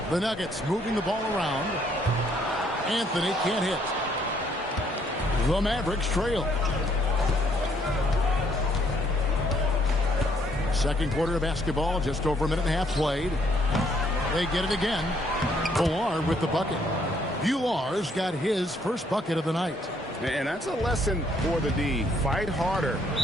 The Nuggets moving the ball around. Anthony can't hit. The Mavericks trail. Second quarter of basketball, just over a minute and a half played. They get it again. Villar with the bucket. Villar's got his first bucket of the night. And that's a lesson for the D. Fight harder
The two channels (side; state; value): both; normal; correlation 0.68